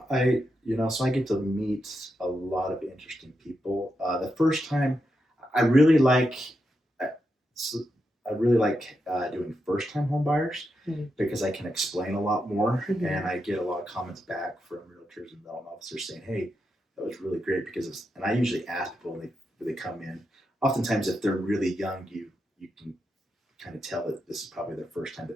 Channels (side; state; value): both; normal; correlation 0.85